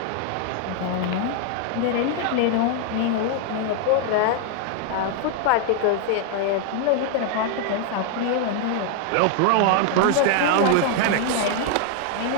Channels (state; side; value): different; both; correlation 0.00